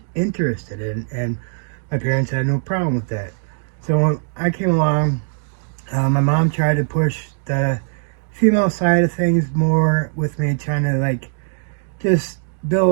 interested in, and my parents had no problem with that. So when I came along, my mom tried to push the female side of things more with me, trying to just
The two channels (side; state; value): left; silent; digital silence